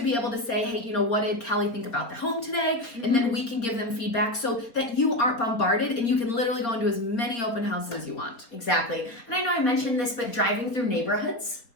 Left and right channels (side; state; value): right; late; 4.3 ms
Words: be able to say, hey, what did Kelly think about the home today? And then we can give them feedback so that you aren't bombarded and you can literally go into as many open houses as you want. Exactly. And I know I mentioned this, but driving through neighborhoods.